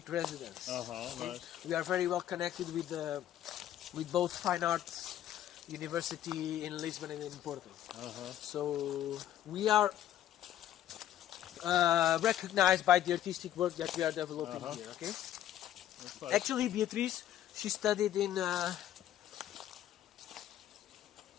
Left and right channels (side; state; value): right; quieter; 11.8 dB